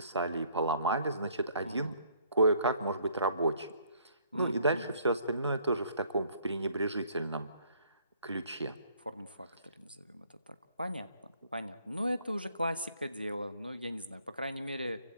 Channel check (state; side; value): inverted; both; correlation -0.62